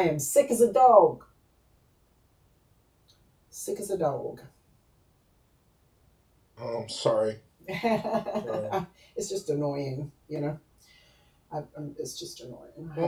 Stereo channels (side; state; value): both; identical; correlation 1.00